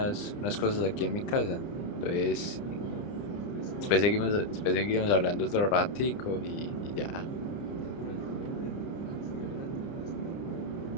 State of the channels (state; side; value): late; right; 30 ms